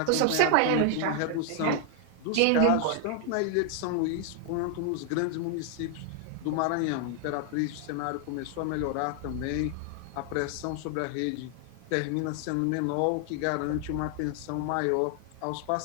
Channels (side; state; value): both; different; correlation 0.00